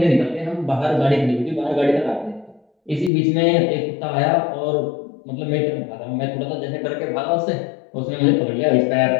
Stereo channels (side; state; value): right; drops out; at 3.1 s